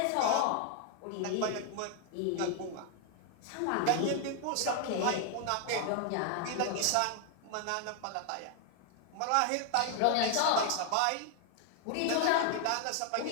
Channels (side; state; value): both; different; correlation 0.00